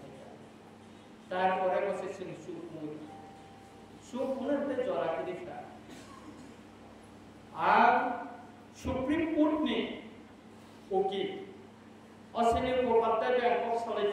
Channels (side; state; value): both; identical; correlation 1.00